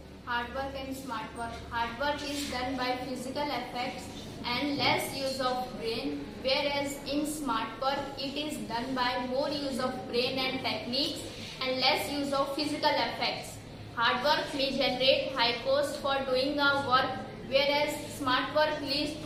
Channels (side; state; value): both; identical; correlation 1.00